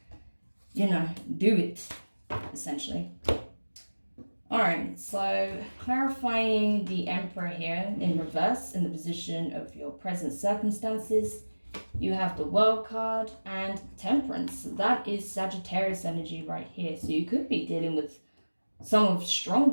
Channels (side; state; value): both; inverted; correlation -1.00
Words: you know, do it, essentially. All right, so clarifying the Emperor here in reverse in the position of your present circumstances. You have the World card and Temperance. So that is Sagittarius energy right here. So you could be dealing with some of